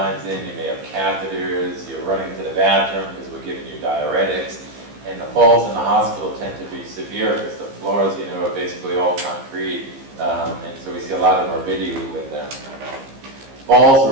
in, you may have catheters, you're running to the bathroom because we're giving you diuretics. And the falls in the hospital tend to be severe because the floors, are basically all concrete. And so we see a lot of morbidity with them. Falls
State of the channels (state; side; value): late; left; 15 ms